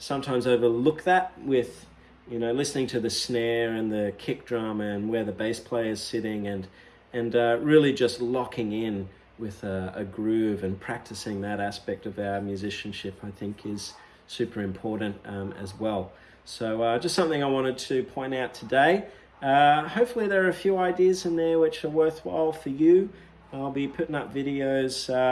overlook that with, listening to the snare and the kick drum and where the bass player is sitting, and really just locking in with a groove and practicing that aspect of our musicianship, I think is super important as well. So just something I wanted to point out today. Hopefully there are a few ideas in there which are worthwhile for you. I'll be putting up videos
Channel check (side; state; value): both; identical; correlation 1.00